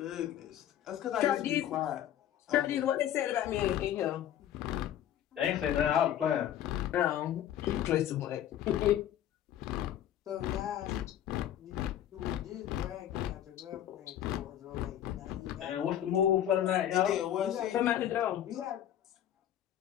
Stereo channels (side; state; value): right; quieter; 11.2 dB